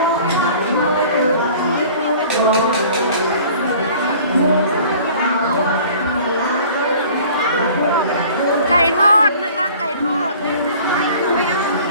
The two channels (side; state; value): both; inverted; correlation -0.48